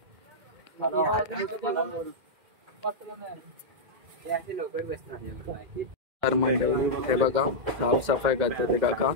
तर मंडळी हे बघा साफसफाई करते ते काका.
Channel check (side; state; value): left; late; 2.1 ms